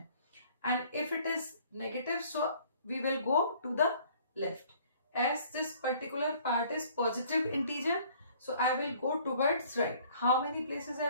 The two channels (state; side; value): inverted; both; correlation -0.56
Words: And if it is negative, so we will go to the left. As this particular part is positive integer, so I will go towards right. How many places